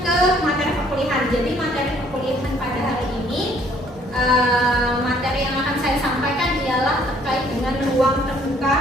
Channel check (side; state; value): both; normal; correlation 0.62